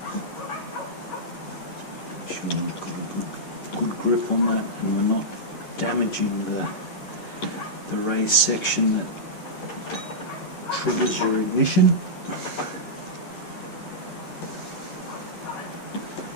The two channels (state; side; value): late; right; 11 ms